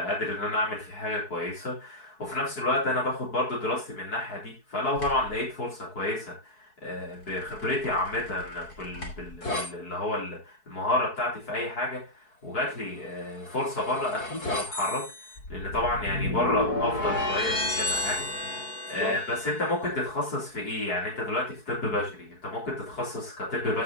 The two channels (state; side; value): late; right; 4.6 ms